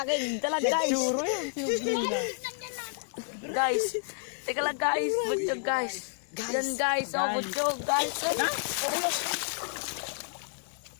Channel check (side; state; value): right; silent; 58 dB below the other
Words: dalag guys. Guys, teka lang guys, butog guys. Yan guys, oh butog guys.